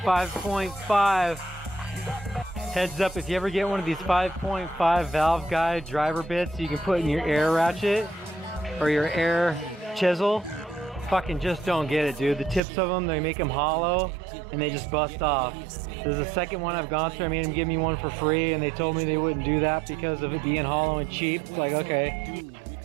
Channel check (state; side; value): drops out; left; at 12.6 s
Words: Heads up, if you ever get one of these 5.5 valve guide driver bits you can put in your air ratchet or your air chisel, fucking just don't get it, dude. The tips of them, they make them hollow and they just bust off. This is the second one I've gone through. I made them give me one for free, and they told me they wouldn't do that because of it being hollow and cheap. It's like, okay.